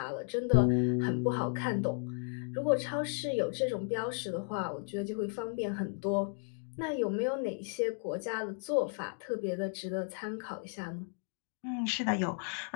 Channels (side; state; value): right; silent; 55 dB below the other